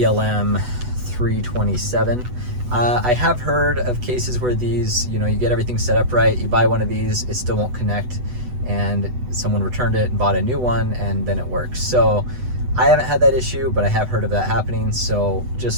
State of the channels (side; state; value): left; late; 8.1 ms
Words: ELM 327. I have heard of cases where these, you get everything set up right, you buy one of these, it still won't connect, and someone returned it and bought a new one, and then it works. So I haven't had that issue, but I have heard of that happening, so